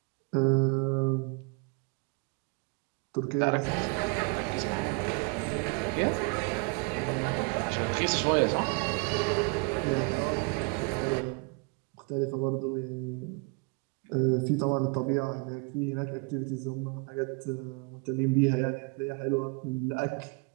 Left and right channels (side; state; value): left; quieter; 32.2 dB